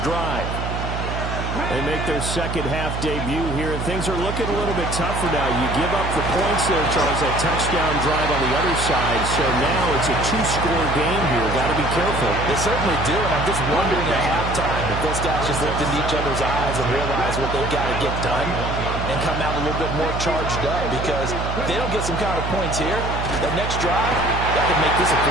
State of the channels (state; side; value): noise; right; hum, 4 dB below the sound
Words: drive. They make their second half debut here, and things are looking a little bit tougher now. You give up the points there, Charles, that touchdown drive on the other side. So now it's a two-score game here. Got to be careful. They certainly do, and I'm just wondering at halftime if those guys just looked into each other's eyes and realize what they've got to get done and come out a little bit more charged up, because if they don't get some kind of points here, that next drive, that could make this a